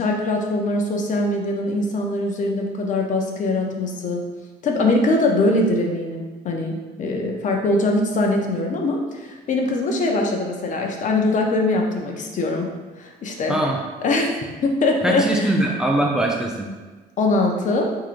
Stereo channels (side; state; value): both; normal; correlation 0.48